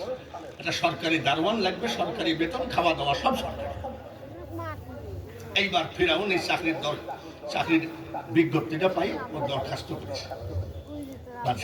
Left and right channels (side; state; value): both; identical; correlation 1.00